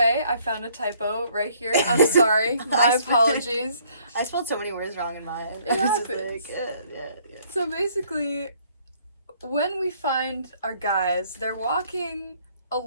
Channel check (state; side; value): inverted; both; correlation -0.63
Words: I found a typo right here. I'm sorry. My apologies. I spelled so many words wrong in mine. It happens. Yeah. So basically, when we find our guys, they're walking